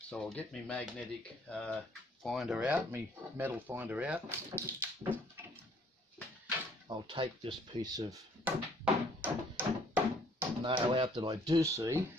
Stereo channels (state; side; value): normal; both; correlation 0.61